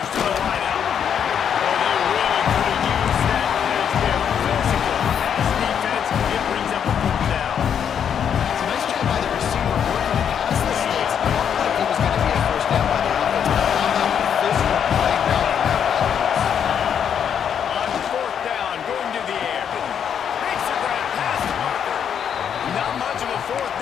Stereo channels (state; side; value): quieter; right; 8.2 dB